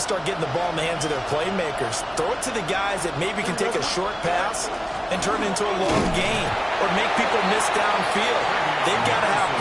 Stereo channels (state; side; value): identical; both; correlation 1.00